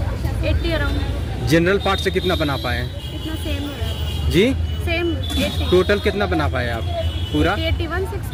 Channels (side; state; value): both; identical; correlation 1.00